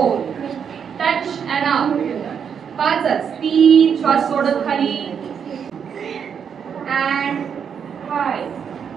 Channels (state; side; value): quieter; left; 7.4 dB